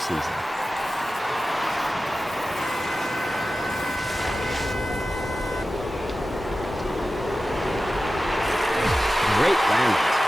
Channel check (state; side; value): normal; both; correlation 0.94